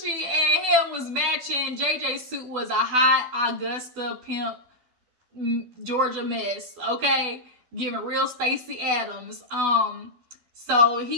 and him was matching. JJ's suit was a hot Augusta pimp Georgia mess, okay? Giving real Stacey Adams. So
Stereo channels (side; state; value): left; late; 12 ms